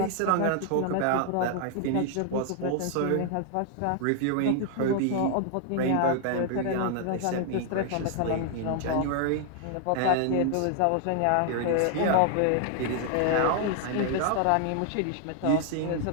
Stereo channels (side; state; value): both; different; correlation 0.00